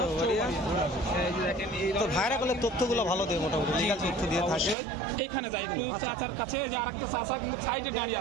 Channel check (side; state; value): left; drops out; at 4.8 s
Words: চৌবাড়িয়া। চৌবাড়িয়া। এই যে দেখেন এই তো ভাইরা বলে তথ্যগুলো ভালো দেয়, মোটামুটি লিগাল তথ্য দিয়ে থাকে। অবশ্যই। এখানে যাই একটু আচ্ছা। চাচার কাছে, যে আরেকটা চাচা কিন্তু সাইডে দাঁড়িয়ে